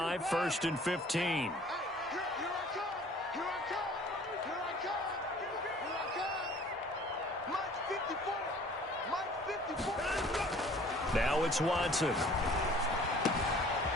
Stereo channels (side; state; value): both; normal; correlation 0.51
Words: 1st and 15. Now it's Watson.